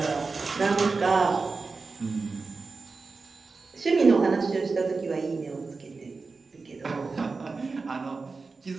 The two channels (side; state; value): left; quieter; 4.2 dB